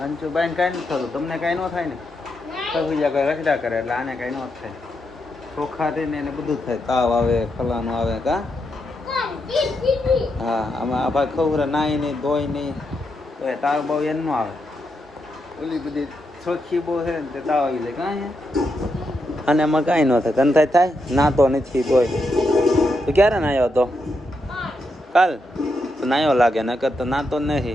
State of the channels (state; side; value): normal; both; correlation 0.83